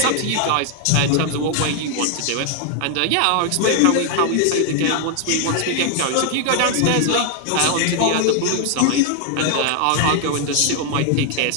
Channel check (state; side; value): different; both; correlation 0.00